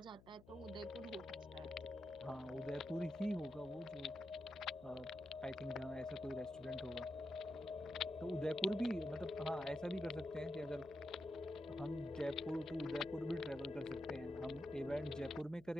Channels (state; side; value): noise; left; hum, 22 dB below the sound